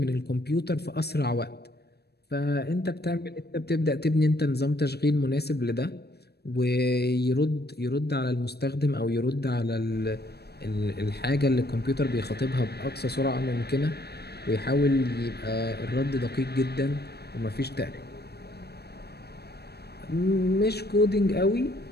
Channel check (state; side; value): late; right; 0.47 ms